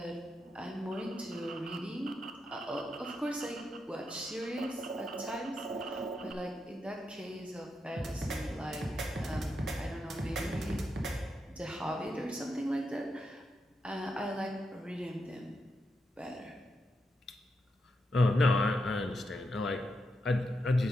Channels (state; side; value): normal; both; correlation 0.85